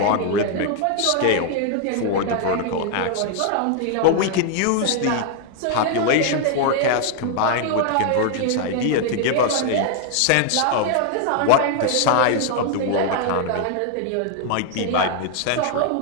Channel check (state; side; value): different; both; correlation 0.00